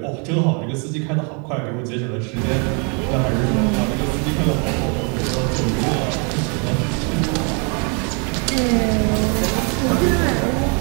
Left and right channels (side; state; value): left; quieter; 36.4 dB